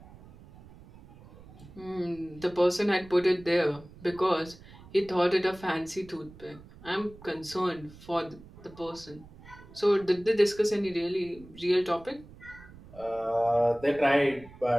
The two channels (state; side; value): noise; right; rumble, 20 dB below the sound